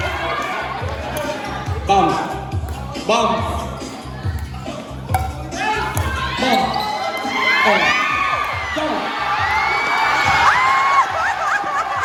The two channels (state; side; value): identical; both; correlation 1.00